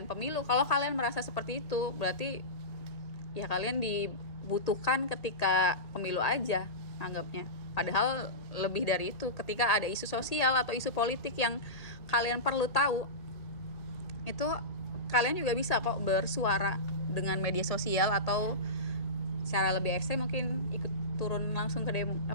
pemilu. Kalau kalian merasa seperti itu, berarti ya kalian dibutuhkan ketika pemilu aja anggapnya. Padahal lebih dari itu, ketika ada isu sosial atau isu politik yang kalian perlu tahu, itu kalian juga bisa kok bersuara dengan media sosial atau secara lebih ekstrem mungkin ikut turun langsung ke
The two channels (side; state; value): right; late; 1.8 ms